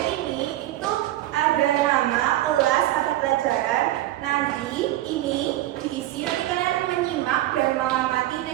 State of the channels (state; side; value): quieter; left; 15.2 dB